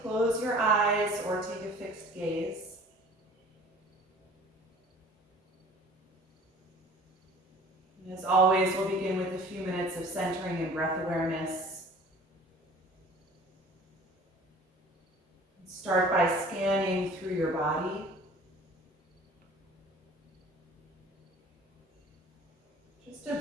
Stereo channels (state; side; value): normal; both; correlation 0.47